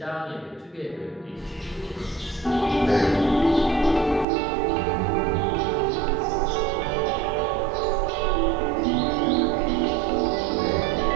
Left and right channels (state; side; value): drops out; left; at 4.2 s